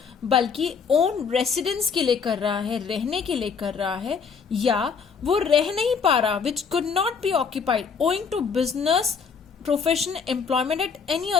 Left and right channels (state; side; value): quieter; right; 5.9 dB